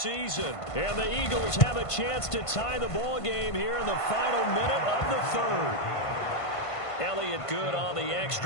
And the Eagles have a chance to tie the ball game here in the final minute of the third. Elliott good on the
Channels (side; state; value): right; late; 1.5 ms